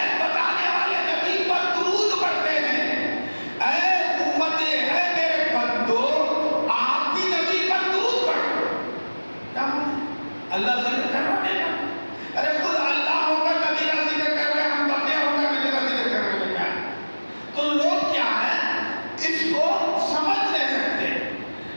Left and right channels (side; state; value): both; inverted; correlation -1.00